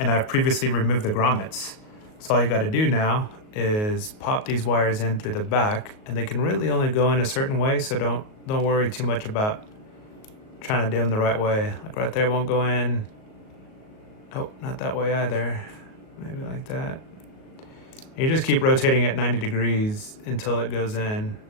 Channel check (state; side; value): late; right; 37 ms